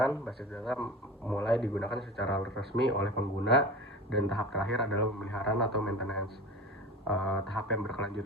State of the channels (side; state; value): both; normal; correlation 0.33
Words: Basis data mulai digunakan secara resmi oleh pengguna, dan tahap terakhir adalah pemeliharaan atau maintenance. Tahap yang